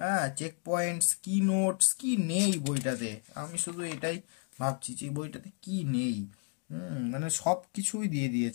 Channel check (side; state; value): right; quieter; 38.9 dB